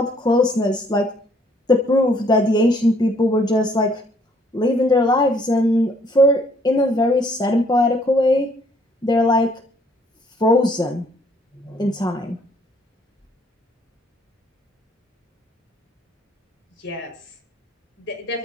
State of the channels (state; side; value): normal; both; correlation 0.64